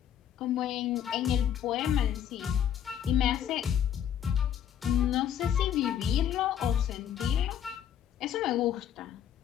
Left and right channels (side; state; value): right; quieter; 9.7 dB